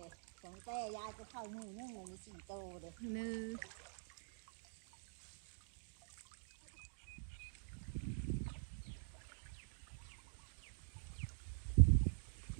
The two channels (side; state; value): left; silent; digital silence